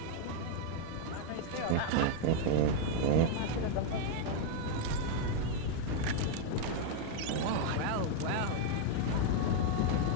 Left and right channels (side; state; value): both; different; correlation 0.00